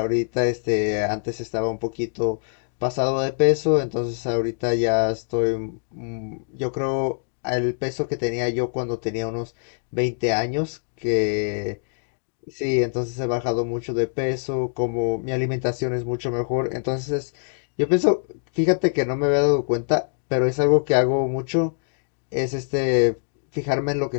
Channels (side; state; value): right; silent; digital silence